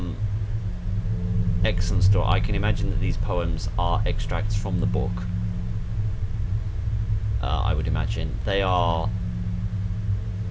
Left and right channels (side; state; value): both; identical; correlation 1.00